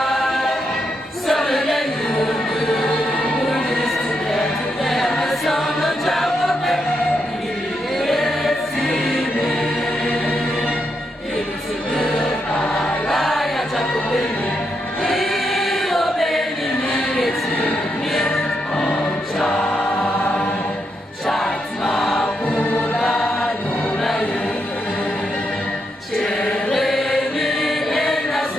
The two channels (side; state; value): both; normal; correlation 0.81